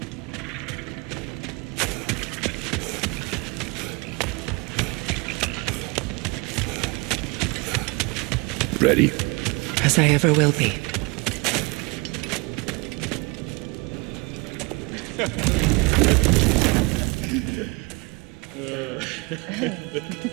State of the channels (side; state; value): left; quieter; 28.0 dB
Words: Ready? As I ever will be.